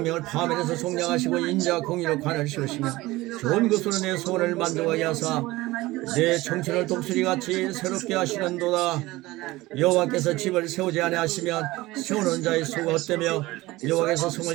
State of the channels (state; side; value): quieter; left; 19.2 dB